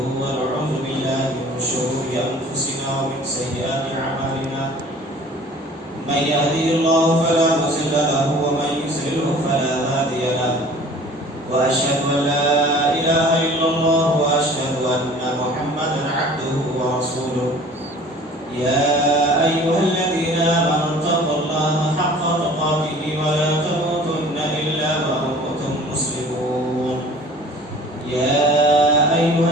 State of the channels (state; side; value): normal; both; correlation 0.47